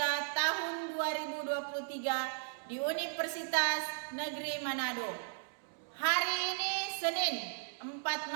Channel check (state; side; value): silent; left; digital silence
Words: tahun 2023 di Universitas Negeri Manado. Hari ini Senin 4